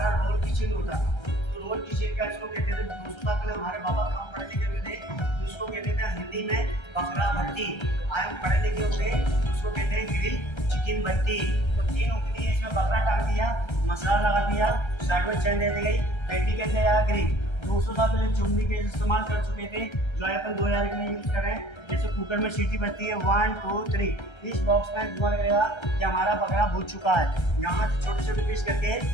रोल किचन होता था, रोल किचन का इसको कहते थे। 200 साल पहले हमारे बाबा काम पढ़े लिखे हुए थे, उसको कहते थे हिंदी में बकरा भट्टी। आज हम पढ़े लिखे हुए उसको कहते हैं ग्रिल चिकन भट्टी। तो 3 उंगली है, इसमें बकरा काट दिया, मसाला लगा दिया, साइड में चैन दे दी गई, पेटी कहते हैं ग्रिल। 200 साल पहले चुम्बी के इस्तेमाल कर चुके थे, जो अपन 2000 के लिए यूज कर रहे हैं। जैसे कुकर में सीटी बजती है 1 2 3, इस बॉक्स में धुआं लगेगा कि हमारा बकरा भून चुका है। यहाँ से छोटे छोटे पीस करके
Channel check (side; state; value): right; late; 1.3 ms